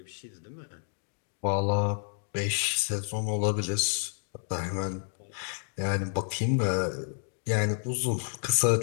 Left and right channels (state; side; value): silent; right; 56 dB below the other